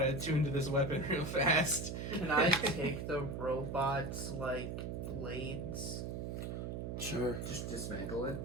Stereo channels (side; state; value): right; noise; hum, 4 dB below the sound